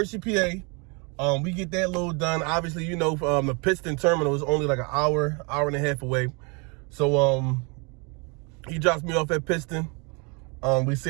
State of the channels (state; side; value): quieter; left; 31.8 dB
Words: PA. We get that load done. Obviously, the Piston terminal is only like an hour and a half away. So he drops me off at Piston. We